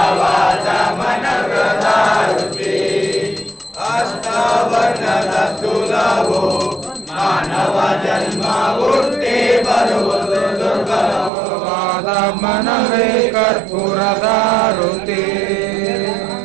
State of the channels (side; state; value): left; drops out; at 11.3 s